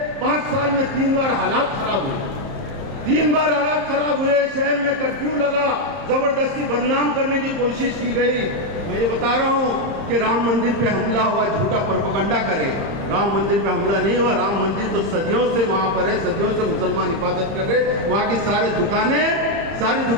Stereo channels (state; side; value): late; left; 30 ms